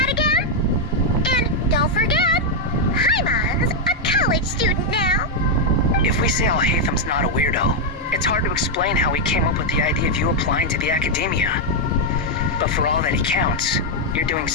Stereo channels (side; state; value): both; normal; correlation -0.01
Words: again? And don't forget, Paimon's a college student now. If we say Al-Haytham's not a weirdo, it's hard to explain how he came up with the idea of you applying to the academia. But for all that he counts, you're doing